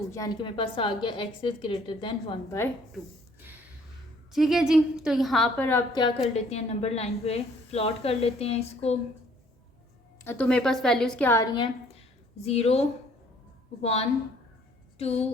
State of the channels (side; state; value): both; normal; correlation 0.60